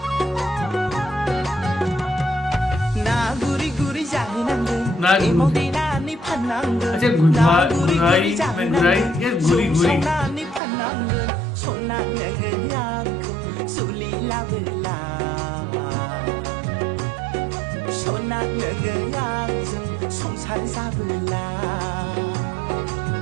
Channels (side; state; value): left; drops out; at 10.6 s